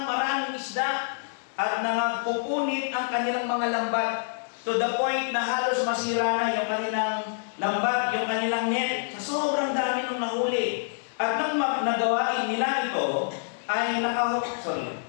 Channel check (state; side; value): silent; right; 60 dB below the other